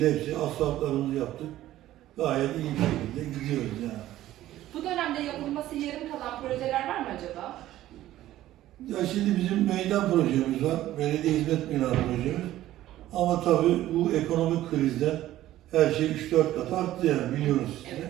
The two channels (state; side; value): quieter; left; 14.2 dB